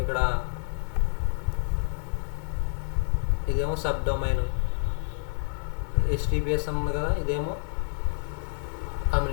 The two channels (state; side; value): silent; right; digital silence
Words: ఇక్కడ ఇదేమో సబ్ డొమైన్. HTTPS ఉంది కదా, ఇదేమో